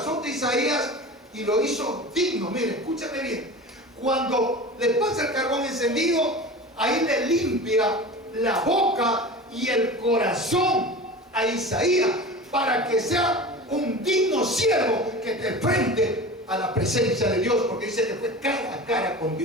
de Isaías y lo hizo digno. Mire, escúchame bien. Cuando le pasa el carbón encendido, ahí le limpia la boca y el corazón a Isaías, para que sea un digno siervo que te enfrente a la presencia de Dios, porque dice que fue cara a cara con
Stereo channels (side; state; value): both; normal; correlation 0.33